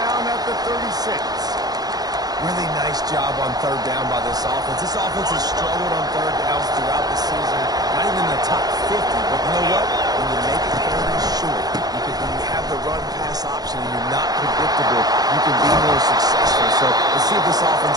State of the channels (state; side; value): late; left; 0.19 ms